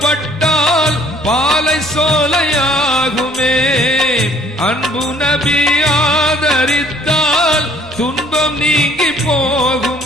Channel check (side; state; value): both; normal; correlation 0.59